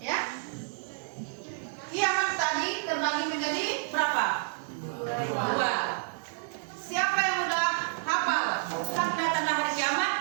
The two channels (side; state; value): left; silent; digital silence